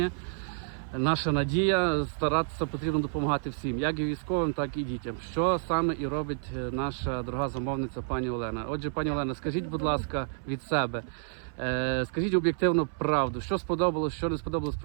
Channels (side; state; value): left; silent; 58 dB below the other